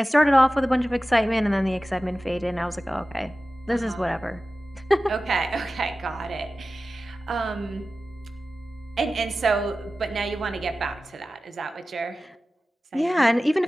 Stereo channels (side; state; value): both; normal; correlation 0.95